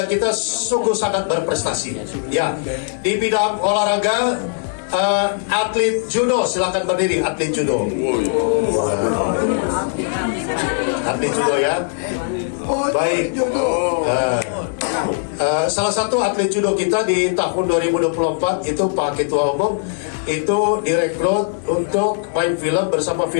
kita sungguh sangat berprestasi. Ya, di bidang olahraga, atlet judo, silakan berdiri, atlet judo. Atlet judo ya. Baik. Salah satu atlet judo kita di tahun 2024 itu Pak Ketua Umum itu direkrut untuk main film bersama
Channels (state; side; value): silent; right; digital silence